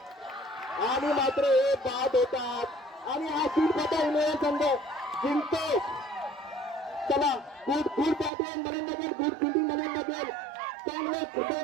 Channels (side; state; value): left; drops out; at 8.3 s